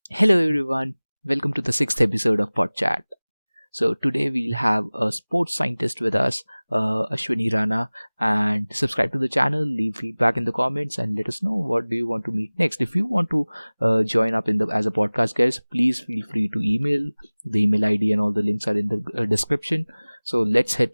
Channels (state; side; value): inverted; both; correlation -1.00